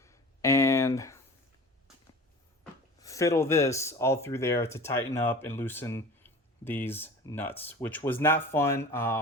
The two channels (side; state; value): both; normal; correlation 0.39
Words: and fiddle this all through there to tighten up and loosen these nuts, which was not fun.